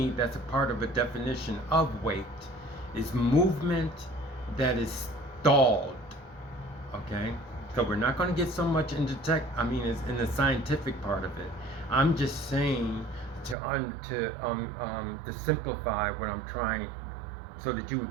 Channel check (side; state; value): left; drops out; at 13.6 s